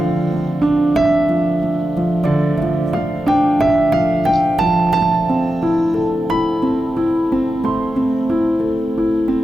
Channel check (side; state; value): both; normal; correlation 0.90